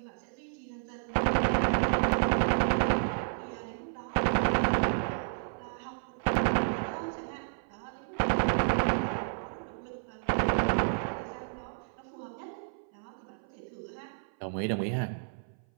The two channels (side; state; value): left; silent; 57 dB below the other